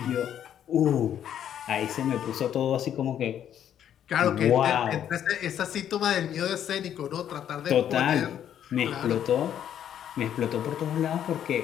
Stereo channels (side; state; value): right; quieter; 10.0 dB